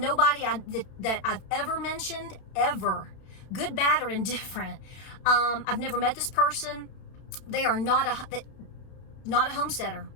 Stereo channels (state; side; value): late; right; 32 ms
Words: that I've ever mentioned, ever, good, bad, or indifferent. I've never met this person. They are not a homesteader,